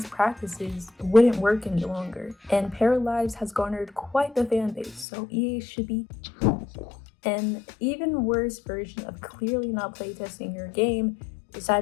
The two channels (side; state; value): right; drops out; at 5.1 s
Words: practices wouldn't work any longer. And Paralyzed has garnered quite the fan base, so EA should be an even worse version of clearly not playtesting your game is